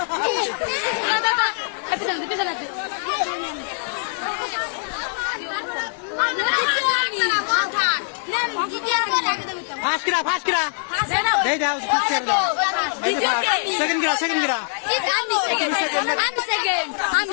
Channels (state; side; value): silent; right; digital silence